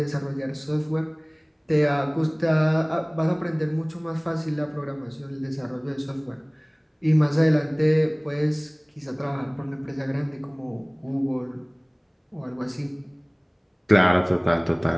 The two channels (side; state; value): both; identical; correlation 1.00